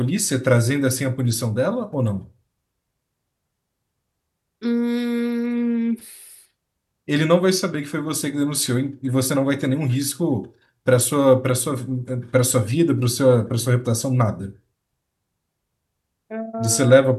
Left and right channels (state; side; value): identical; both; correlation 1.00